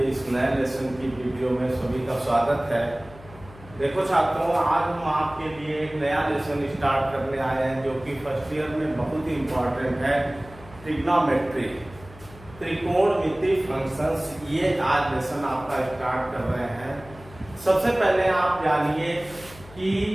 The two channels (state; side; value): noise; left; hum, 20 dB below the sound